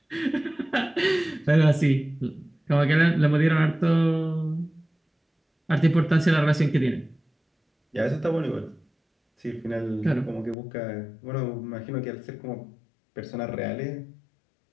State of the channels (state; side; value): drops out; right; at 10.6 s